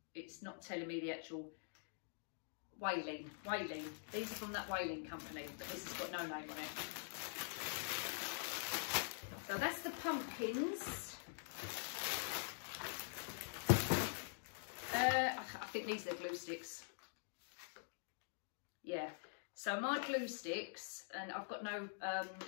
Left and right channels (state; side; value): silent; right; digital silence